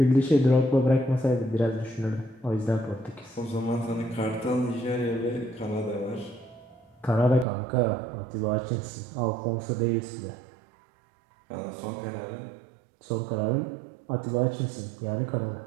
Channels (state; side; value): drops out; left; at 7.5 s